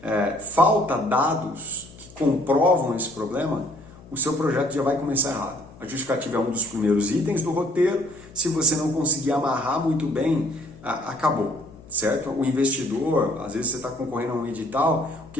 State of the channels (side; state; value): left; noise; hum, 21 dB below the sound